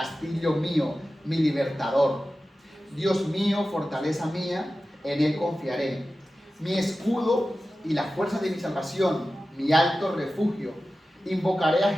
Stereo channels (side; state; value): both; normal; correlation 0.94